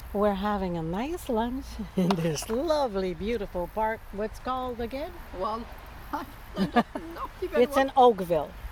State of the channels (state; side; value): identical; both; correlation 1.00